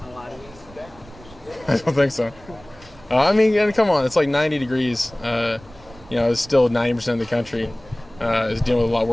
how hot it is? I don't think so. I mean, come on, it's like 90 degrees. It's still 90% of the country is dealing with a lot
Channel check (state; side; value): noise; right; rumble, 22 dB below the sound